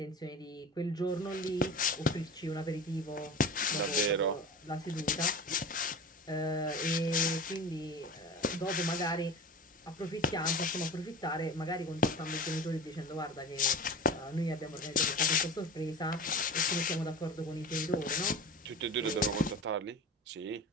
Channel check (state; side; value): normal; both; correlation 0.33